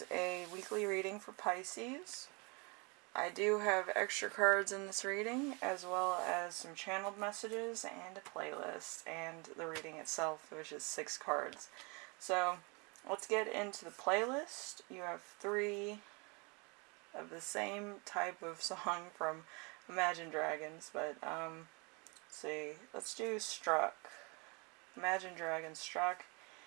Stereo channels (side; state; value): left; quieter; 30.6 dB